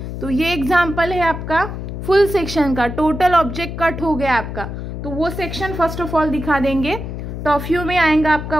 तो ये एग्जाम्पल है आपका फुल सेक्शन का। टोटल ऑब्जेक्ट कट हो गया आपका, तो वो सेक्शन फर्स्ट ऑफ ऑल दिखा देंगे। टॉप व्यू में आएगा आपका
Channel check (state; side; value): noise; left; hum, 7 dB below the sound